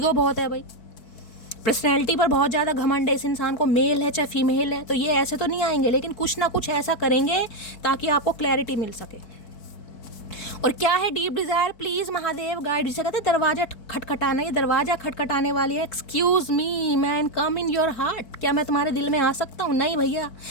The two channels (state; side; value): late; right; 4.6 ms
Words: बहुत है भाई, पर्सनैलिटी पर बहुत ज़्यादा घमंड है इस इंसान को, मेल है चाहे फीमेल है, तो ये ऐसे तो नहीं आएंगे, लेकिन कुछ ना कुछ ऐसा करेंगे ताकि आपको क्लैरिटी मिल सके। और क्या है deep Dzire, please Mahadev guide. जिसे कहते हैं दरवाजा खटखटाना, ये दरवाजा खटखटाने वाली है। Excuse me man, come in your heart. क्या मैं तुम्हारे दिल में आ सकता हूँ? नहीं भैया,